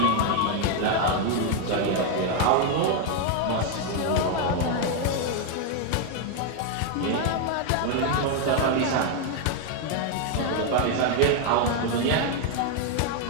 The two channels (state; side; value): different; both; correlation 0.01